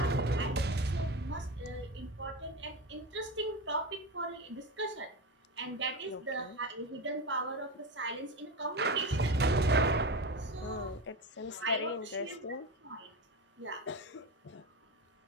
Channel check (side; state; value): both; normal; correlation 0.22